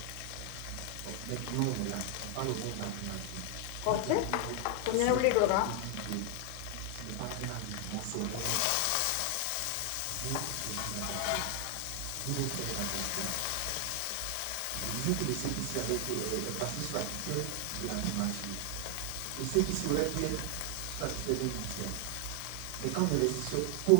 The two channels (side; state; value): both; different; correlation 0.00